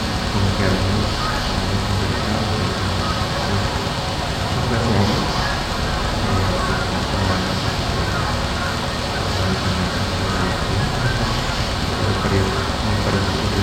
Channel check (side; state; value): both; identical; correlation 1.00